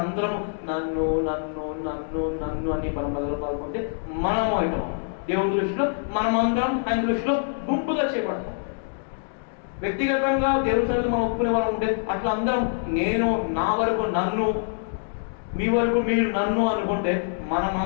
అందరం నన్ను నన్ను నన్ను నన్ను అని మనం మొదలు పాల్గొంటే మనము అవుతాం. దేవుని దృష్టిలో మనమందరం ఆయన దృష్టిలో గుంపుగా చేపడతాం. వ్యక్తిగతంగా దేవుని సన్నిధిలో మనం ఒప్పుకునే వాళ్ళు ఉంటే అట్లా అందరం నేను, నా వరకు నన్ను, మీ వరకు మీరు నన్ను అనుకుంటే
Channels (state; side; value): silent; right; digital silence